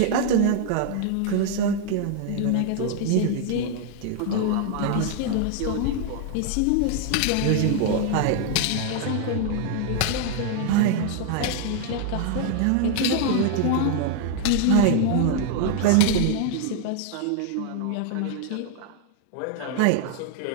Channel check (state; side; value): different; both; correlation 0.00